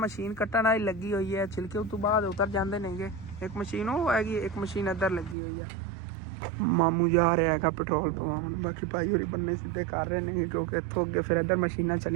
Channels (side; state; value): left; drops out; at 5.4 s